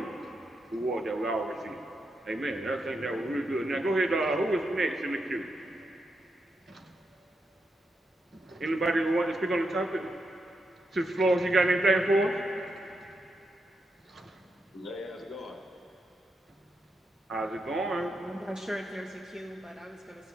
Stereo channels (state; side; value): normal; both; correlation 0.84